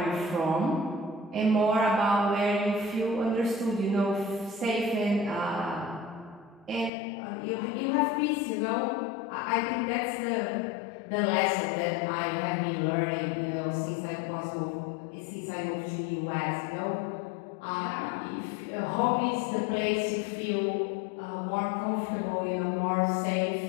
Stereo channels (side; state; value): right; drops out; at 6.9 s